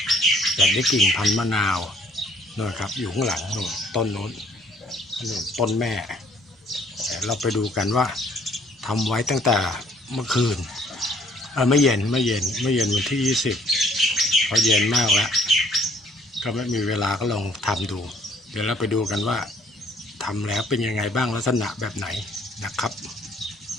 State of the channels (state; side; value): normal; both; correlation 0.61